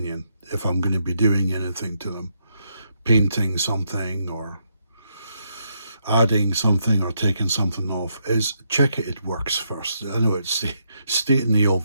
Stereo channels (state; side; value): inverted; both; correlation -0.78